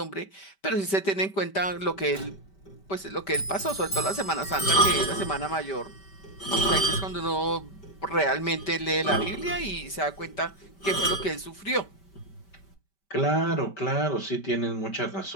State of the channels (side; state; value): right; late; 5.1 ms